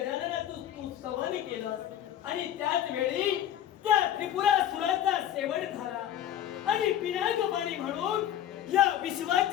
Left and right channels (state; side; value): quieter; right; 11.0 dB